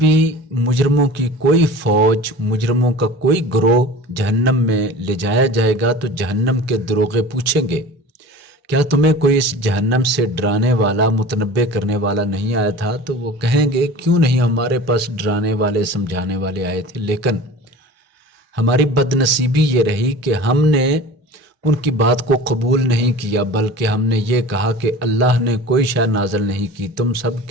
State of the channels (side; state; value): both; normal; correlation 0.39